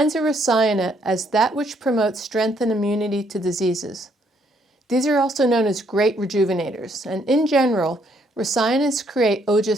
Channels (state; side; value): normal; both; correlation 0.70